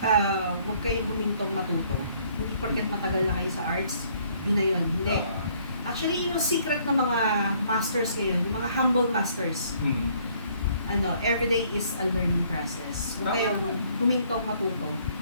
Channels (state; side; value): inverted; both; correlation -0.63